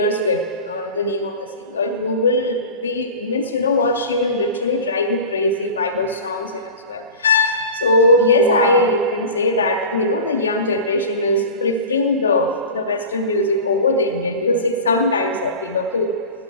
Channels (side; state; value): both; inverted; correlation -0.33